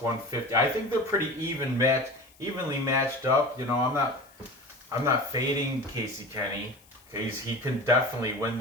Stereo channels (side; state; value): left; noise; hiss, 28 dB below the sound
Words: I think they're pretty evenly matched up. You know, I'm not fading Casey Kenney because he can definitely win